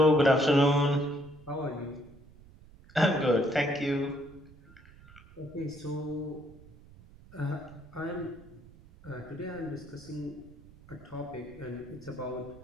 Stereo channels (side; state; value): right; noise; rumble, 22 dB below the sound